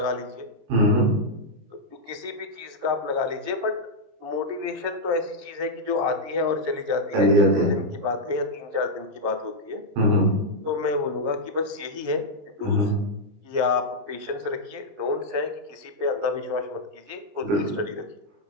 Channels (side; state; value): left; late; 20 ms